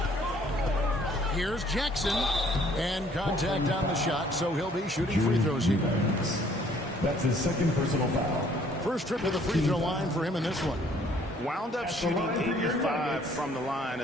Here's Jackson, and contact on the shot, so he'll be shooting free throws here. That's his second personal foul. First trip to the free throw line for him in this one. Wound up shooting 85 from the line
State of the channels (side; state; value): both; normal; correlation 0.60